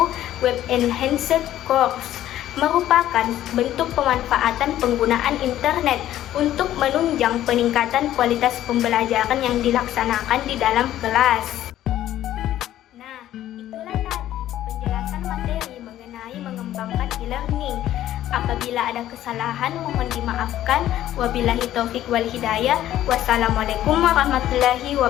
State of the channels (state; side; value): quieter; right; 12.8 dB